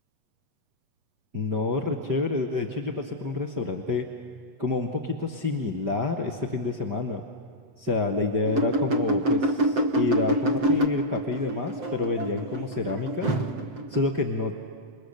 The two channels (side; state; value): left; late; 7.6 ms